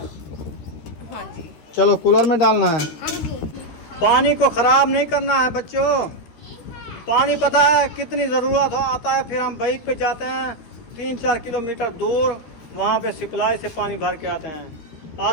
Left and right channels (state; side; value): late; right; 13 ms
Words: जी। चलो कूलर में डालना है। हाँ जी। पानी को खराब नहीं करना है बच्चों। पानी पता है कितनी ज़रूरत हो आता है, फिर हम बाइक पे जाते हैं 3-4 किलोमीटर दूर, वहाँ पे सप्लाई से पानी भर के आते हैं।